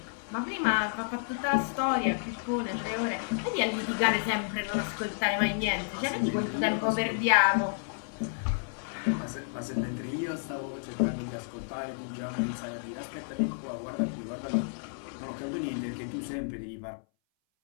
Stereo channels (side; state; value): right; silent; 57 dB below the other